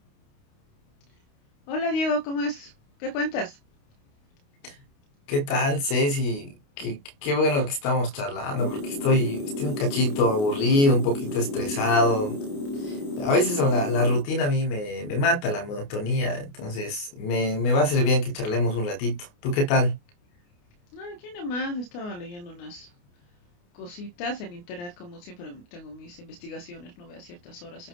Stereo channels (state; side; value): late; right; 28 ms